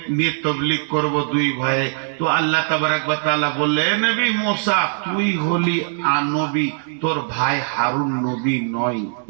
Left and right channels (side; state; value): left; silent; 65 dB below the other